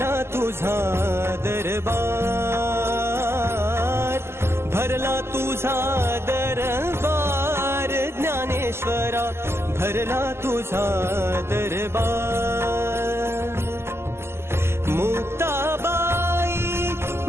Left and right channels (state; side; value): late; left; 0.12 ms